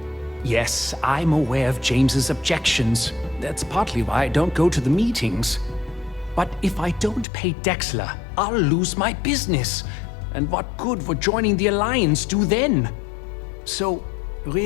Yes, I'm aware of James's objections. That's partly why I don't go to the meetings. But if I don't pay Dexler, I'll lose my business. And what good would joining the Alliance do then? So,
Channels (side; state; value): right; drops out; at 7.2 s